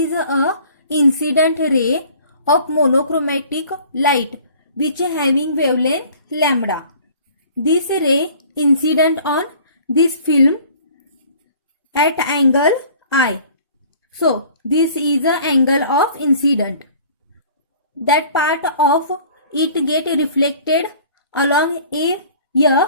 a incident ray of monochromatic light which having wavelength lambda. This ray incident on this film at angle I. So this is the angle of incident. That part of it get reflected along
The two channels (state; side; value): inverted; both; correlation -0.50